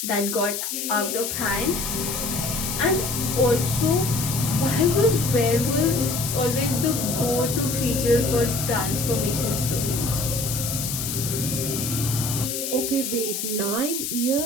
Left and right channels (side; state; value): left; noise; hiss, 3 dB below the sound